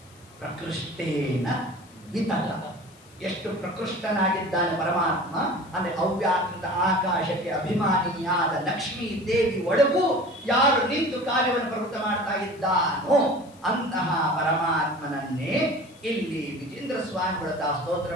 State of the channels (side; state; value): left; noise; hiss, 27 dB below the sound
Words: ಪ್ರಕೃಷ್ಟೇನ ವಿತತ. ಎಷ್ಟು ಪ್ರಕೃಷ್ಟನಾಗಿದ್ದಾನೆ ಪರಮಾತ್ಮ ಅಂದ್ರೆ ಅವ್ಯಾಕೃತ ಆಕಾಶಕ್ಕೆ ಅಭಿಮಾನಿಯಾದ ಲಕ್ಷ್ಮೀ ದೇವಿ ಒಳಗೂ ಯಾರು ನಿಂತು ಕಾರ್ಯವನ್ನು ಪ್ರವೃತ್ತ ಮಾಡ್ತಾ ಇದ್ದಾನೋ ಅಂತಹ ಪರಮಾತ್ಮನನ್ನೇ ಇಲ್ಲಿ ವಿಜೇಂದ್ರ ಸ್ವಾಮಿಗಳ ಸ್ತೋತ್ರ